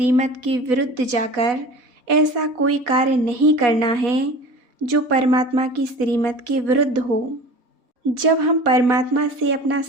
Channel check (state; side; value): late; left; 4.1 ms